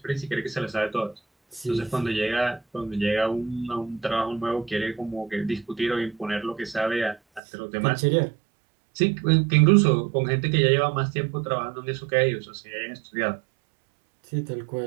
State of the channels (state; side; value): drops out; left; at 7.4 s